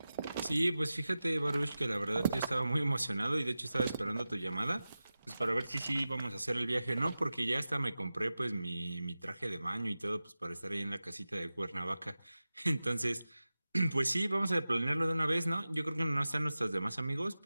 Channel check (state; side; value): inverted; both; correlation -0.95